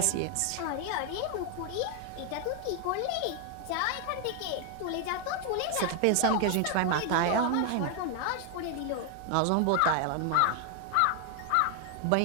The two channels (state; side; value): different; both; correlation 0.00